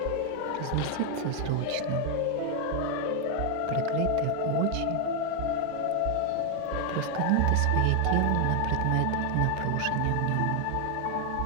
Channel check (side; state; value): both; different; correlation 0.01